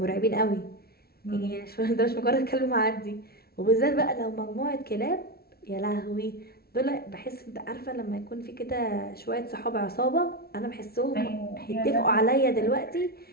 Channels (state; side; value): late; right; 0.45 ms